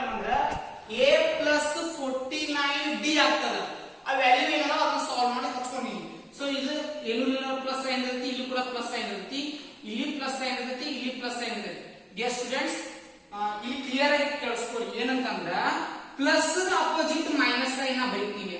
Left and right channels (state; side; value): identical; both; correlation 1.00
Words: ಅಂದ್ರೆ a plus 49d ಆಗ್ತದೆ. ಆ value ಏನಲ್ಲ ಅದನ್ನ solve ಮಾಡಿ ಹಚ್ಕೊಂಡಿನಿ. ಸೊ ಇದು ಏನು ಪ್ಲಸ್ ಸೈನ್ ಇರುತ್ತೆ, ಇಲ್ಲಿ ಕೂಡ ಪ್ಲಸ್ ಸೈನ್ ಇರುತ್ತೆ, ಇಲ್ಲಿ ಪ್ಲಸ್ ಸೈನ್ ಇರುತ್ತೆ, ಇಲ್ಲಿ ಪ್ಲಸ್ ಸೈನ್ ಇರುತ್ತೆ. ಡಿಯರ್ ಸ್ಟೂಡೆಂಟ್ಸ್, ಇಲ್ಲಿ ಕ್ಲಿಯರ್ ಆಗಿ ಕೇಳಿಸ್ಕೊಳ್ಳಿ. ಏನಂತಂದ್ರ ಪ್ಲಸ್ ಅಪೋಸಿಟ್ ಮೈನಸ್ ಸೈನ್ ಬರೀತೀವಿ